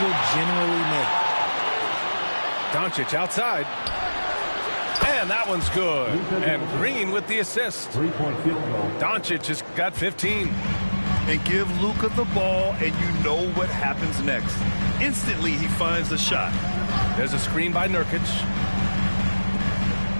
generally make. Doncic outside. And that one's good. And Green with the assist. 3-point field goal. Doncic has got 15. And give Luka the ball, and you know what happens next. Instantly, he finds the shot. There's a screen by Nurkic.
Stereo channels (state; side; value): inverted; both; correlation -1.00